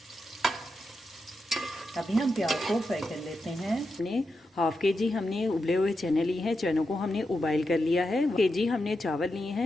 अभी हम प्याज को फ्राई कर लेते हैं। हमने हाफ के जी हमने उबले हुए चने लिए हैं। चनों को हमने उबाइल कर लिया है। के जी हमने चावल लिए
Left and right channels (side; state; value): both; normal; correlation 0.87